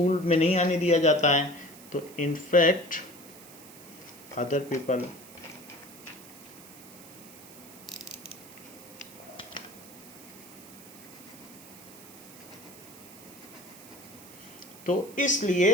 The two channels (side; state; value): right; noise; hiss, 18 dB below the sound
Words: में नहीं आने दिया जाता है, तो इन्फेक्ट अदर पीपल। तो